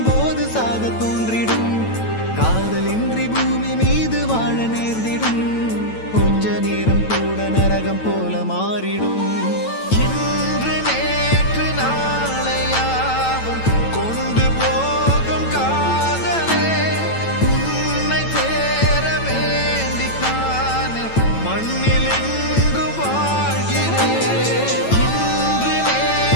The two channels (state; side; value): late; right; 9.0 ms